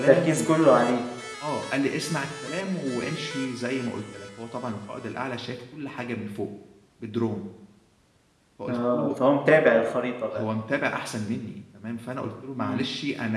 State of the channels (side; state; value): both; identical; correlation 1.00